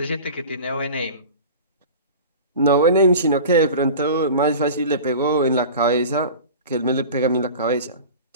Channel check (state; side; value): inverted; both; correlation -0.36